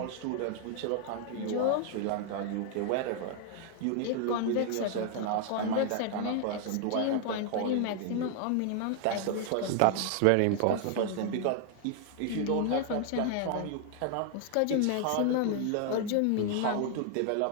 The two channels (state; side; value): different; both; correlation 0.00